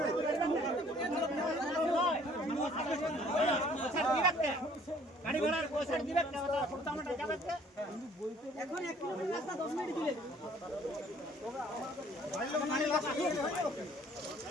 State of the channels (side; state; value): both; normal; correlation 0.57